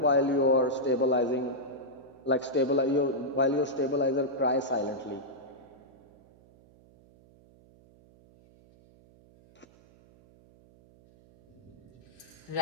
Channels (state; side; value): noise; right; hum, 27 dB below the sound